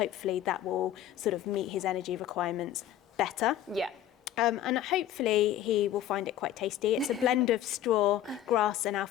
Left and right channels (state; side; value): quieter; right; 11.7 dB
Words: that will sort of meet his energy requirements better. And hopefully he will find it quite tasty. It's a blend of straw, grass and